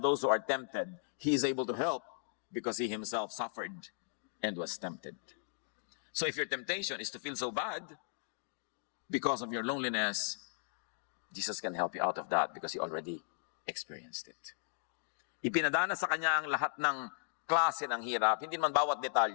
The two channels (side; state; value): right; silent; digital silence